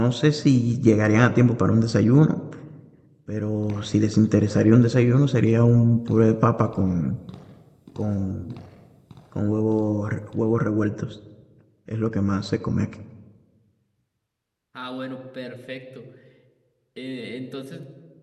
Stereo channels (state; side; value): identical; both; correlation 1.00